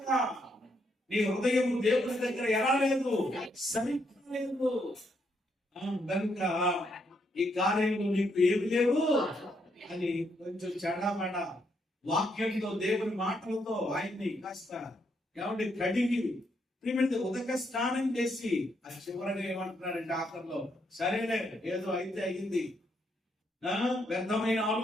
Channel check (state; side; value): normal; both; correlation 0.76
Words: నీ హృదయం దేవుని దగ్గర ఎలా లేదు, సరిగ్గా లేదు. కనుక ఈ కార్యంలో నీకు ఏమి లేవు అని కొంచెం చెడమడ వాక్యంతో, దేవుని మాటలతో ఆయన్ని కాస్త ఏమంటే కడిగి ఉదక స్నానం చేసి అది చివరగా ఏమంటున్నారంటే ఆఖరిలో, సరేలే ఏదో అయితే అయింది, వ్యర్థమైన